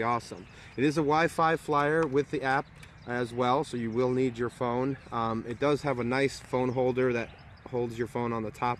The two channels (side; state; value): both; identical; correlation 1.00